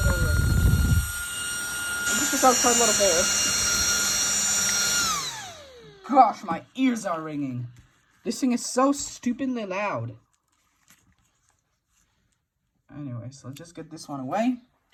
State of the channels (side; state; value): both; identical; correlation 1.00